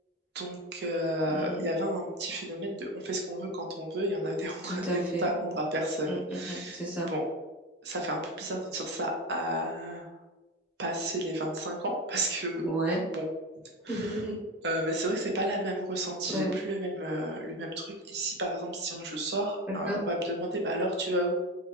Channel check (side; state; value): both; normal; correlation 0.22